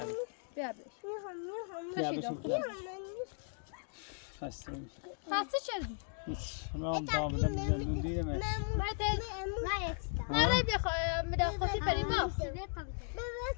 بش بیا تشید بشین آخر خسته میشه پسی چه هیچ رام دامدم زندون دیدمش نه بخواه میدن خودی بریم ما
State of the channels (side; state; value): right; silent; 53 dB below the other